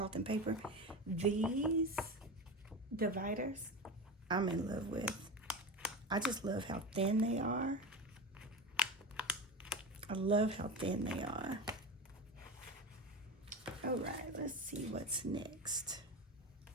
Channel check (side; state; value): both; normal; correlation 0.24